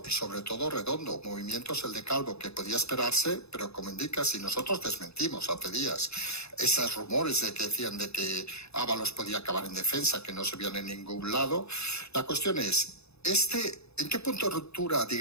y sobre todo Redondo. Movimientos el de Calvo que podía esperarse, pero como indica, si nosotros desmentimos hace días esos rumores de que decían de que Ábalos podía acabar en defensa, que no se vieron en ningún lado, la cuestión es, ¿en qué punto de ruptura,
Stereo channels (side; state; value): right; late; 0.79 ms